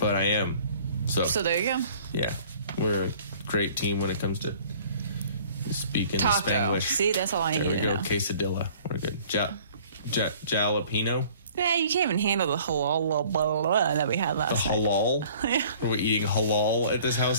I am. So there you go. Yeah, we're a great team when it comes to speaking Taco. Spanish. See, that's all I need to know. Quesadilla. We're good. Jalapeno. Yeah, you can't even handle the halal blah, blah, blah that we had last night. Halal? Yeah. Are we eating halal at this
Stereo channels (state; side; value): inverted; both; correlation -0.52